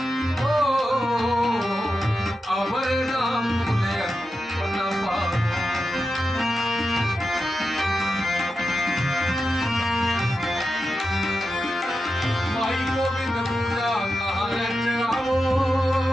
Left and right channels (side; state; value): both; normal; correlation 0.90